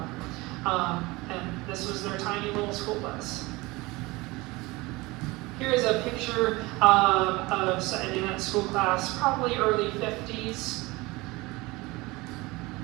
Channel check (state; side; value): quieter; left; 22.3 dB